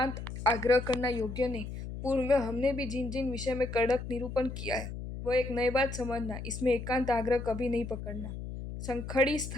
आग्रह करना योग्य नहीं। पूर्व हमने भी जिन जिन विषय में कड़क निरूपण किया है वह एक नई बात समझना, इसमें एकांत आग्रह कभी नहीं पकड़ना। संखड़ी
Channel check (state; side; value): noise; left; hum, 8 dB below the sound